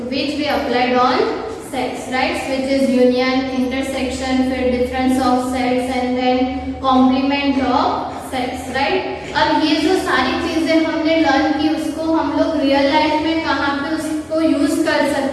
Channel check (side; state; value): both; identical; correlation 1.00